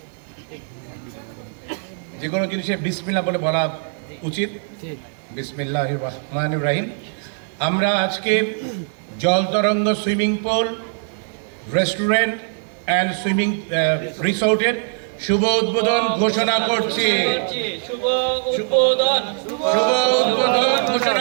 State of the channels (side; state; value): left; silent; 63 dB below the other